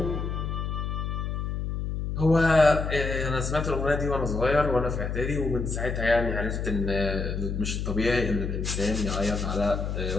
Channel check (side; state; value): left; noise; hum, 3 dB below the sound